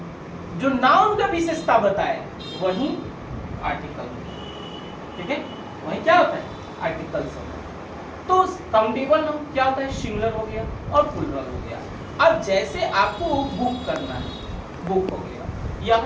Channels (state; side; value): identical; both; correlation 1.00